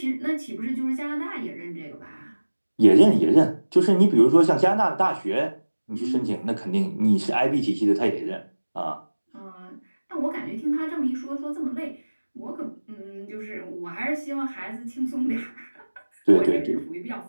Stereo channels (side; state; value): both; inverted; correlation -1.00